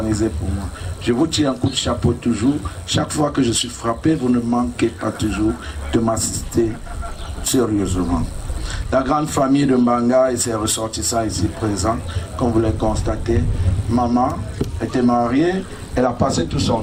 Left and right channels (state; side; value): identical; both; correlation 1.00